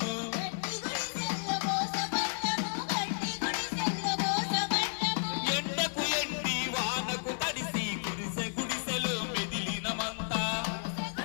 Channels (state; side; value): silent; right; 55 dB below the other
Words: ఎండకు ఎండి వానకు తడిసి గుడిసె గుడిసెలు మెదిలినమంతా.